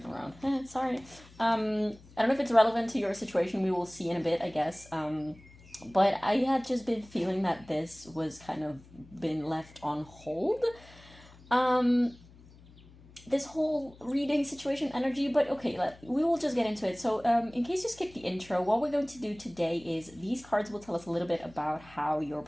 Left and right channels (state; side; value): noise; left; hum, 23 dB below the sound